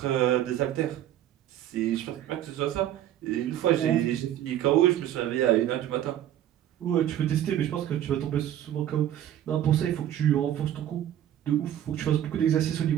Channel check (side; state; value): left; quieter; 11.6 dB